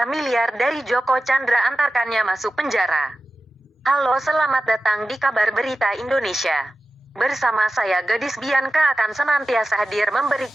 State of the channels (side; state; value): both; normal; correlation 0.95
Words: miliar dari Joko Chandra antarkannya masuk penjara. Halo, selamat datang di Kabar Berita Indonesia. Bersama saya Gadis Bianca akan senantiasa hadir